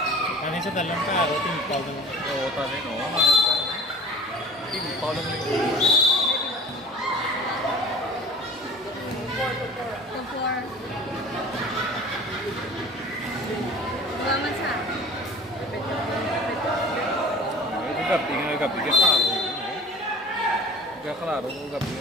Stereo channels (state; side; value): normal; both; correlation 0.43